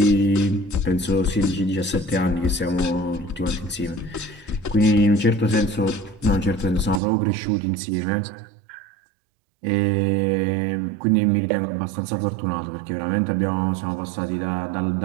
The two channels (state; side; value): drops out; left; at 7.0 s